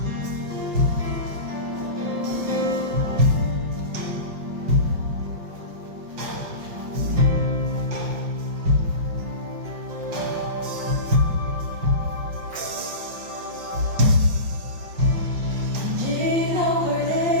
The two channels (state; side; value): late; left; 5.5 ms